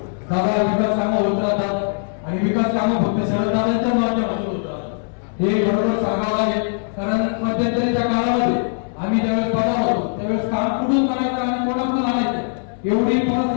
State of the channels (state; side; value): silent; right; digital silence